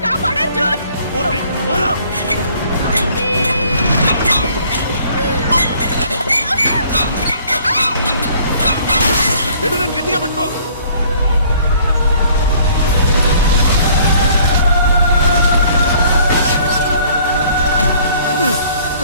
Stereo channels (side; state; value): both; inverted; correlation -0.57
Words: కాపాడు అర్జున్. గట్టిగా పట్టుకో.